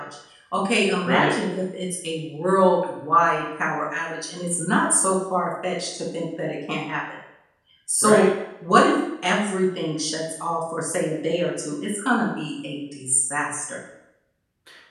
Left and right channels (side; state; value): both; identical; correlation 1.00